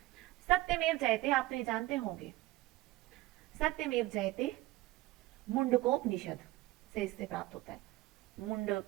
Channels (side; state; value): left; quieter; 18.2 dB